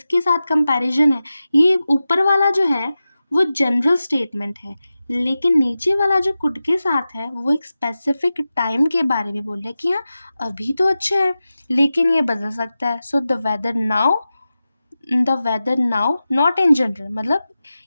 साथ कंपैरिजन है। ये ऊपर वाला जो है वो जनरल स्टेटमेंट है, लेकिन नीचे वाला जो कुड के साथ है वो एक स्पेसिफिक टाइम के बारे में बोल रहा है कि हाँ अभी तो अच्छा है लेकिन ये बदल सकता है। So the weather now not in general, मतलब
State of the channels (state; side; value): inverted; both; correlation -0.94